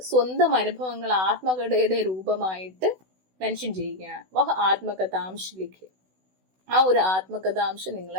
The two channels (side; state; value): left; late; 16 ms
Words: സ്വന്തം അനുഭവങ്ങൾ ആത്മകഥയുടെ രൂപമായിട്ട് മെൻഷൻ ചെയ്യുകയാണ്. വഹ ആത്മകഥാംശ ലിഖേ, ആ ഒരു ആത്മകഥാംശം നിങ്ങൾ